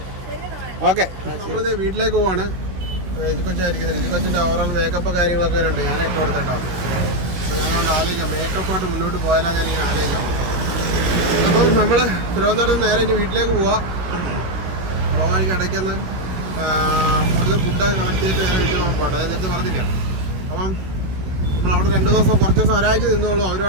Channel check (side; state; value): left; late; 16 ms